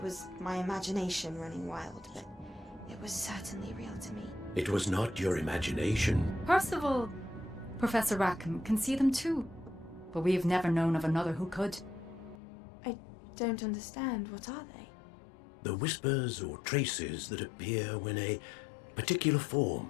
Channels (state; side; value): drops out; right; at 12.4 s